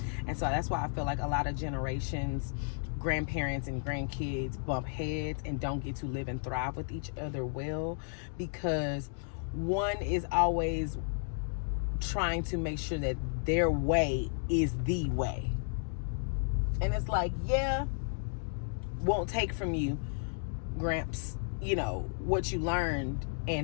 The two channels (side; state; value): right; silent; digital silence